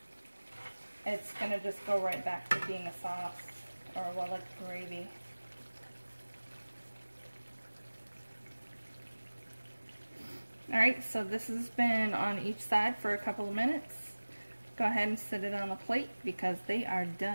it's going to just go right back to being a sauce, or well, like gravy. Alright, so this has been on each side for a couple of minutes. Go ahead and set it on a plate because they are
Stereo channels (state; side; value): inverted; both; correlation -1.00